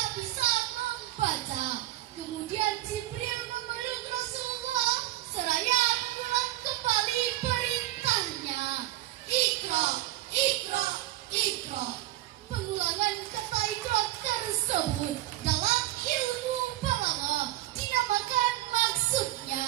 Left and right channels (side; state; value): left; quieter; 16.2 dB